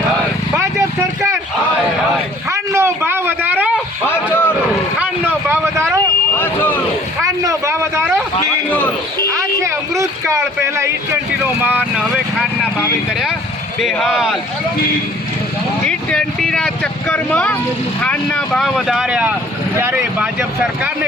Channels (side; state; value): both; normal; correlation 0.54